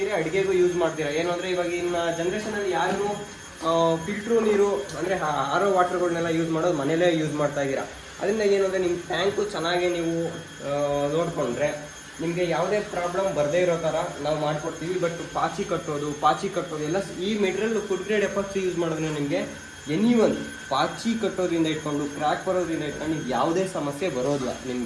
ಅಡುಗೆಗೂ ಯೂಸ್ ಮಾಡ್ತೀರಾ. ಏನು ಅಂದರೆ ಇವಾಗಿನ ಜನ್ರೇಷನಲ್ಲಿ ಯಾರು ಫಿಲ್ಟ್ರು ನೀರು ಅಂದರೆ ಆರ್ ಒ ವಾಟರ್ಗಳನ್ನೆಲ್ಲ ಯೂಸ್ ಮಾಡೋದು ಮನೇಲೇ ಯೂಸ್ ಮಾಡ್ತಾ ಇದ್ದೀರಾ. ಅದರಿಂದ ಏನು ಅಂದರೆ ನಿಮ್ಮ ಟ್ಯಾಂಕು ಚೆನ್ನಾಗಿ ನೀವು ನೋಡಿಕೊಂಡ್ರೆ ನಿಮಗೆ ಯಾವುದೇ ಪ್ರಾಬ್ಲಮ್ ಬರದೇ ಇರೋ ಥರ ನಾವು ಮಾಡಿಕೊಡ್ತೀವಿ. ಬಟ್ ಪಾಚಿ ಕಟ್ಟೋದು ಎಲ್ಲ ಈ material food grade epoxy use ಮಾಡೋದ್ರಿಂದ ನಿಮಗೆ ಪಾಚಿ ಕಟ್ಟೋದ್ರಿಂದ ಇಟ್ಕೊಂಡು ಕ್ರ್ಯಾಕ್ ಬರೋದ್ರಿಂದ ಇಟ್ಕೊಂಡು ಯಾವುದೇ ಸಮಸ್ಯೆ ಬರೋದಿಲ್ಲ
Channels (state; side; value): identical; both; correlation 1.00